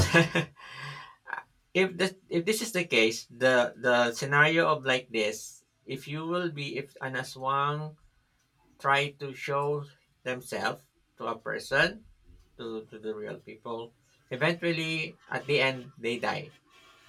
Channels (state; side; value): identical; both; correlation 1.00